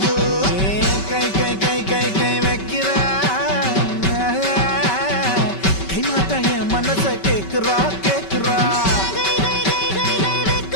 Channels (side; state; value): right; late; 5.2 ms